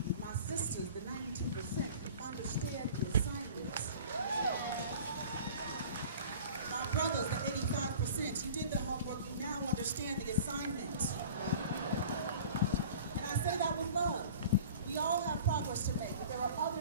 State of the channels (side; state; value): both; inverted; correlation -0.43